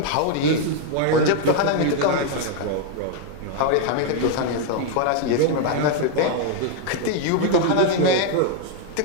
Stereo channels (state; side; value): different; both; correlation 0.00